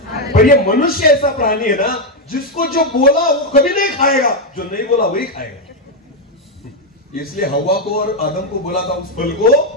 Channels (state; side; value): normal; both; correlation 0.03